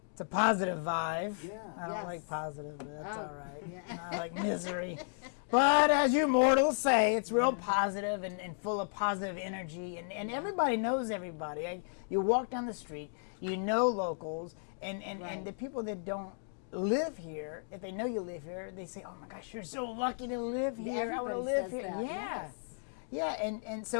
vibe. Yeah. I don't Yes. like positive, but that's Oh, all right. yeah. I like misery. But as you mortals say, it's real positive and full of positive energy. And everybody knows everybody. You walk down the street, you know locals, and Right. the people that don't live here, if they know you live here, they say, oh my gosh, you're so lucky to live here. I want to Everybody live says here. that, Yeah. yes. Yeah, and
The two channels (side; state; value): right; silent; digital silence